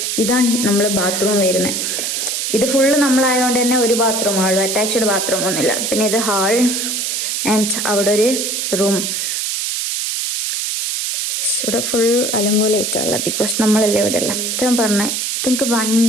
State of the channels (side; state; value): right; noise; hiss, 1 dB below the sound